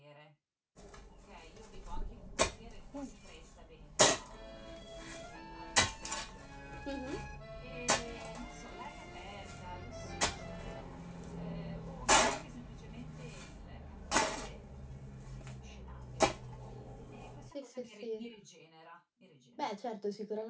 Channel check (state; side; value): identical; both; correlation 1.00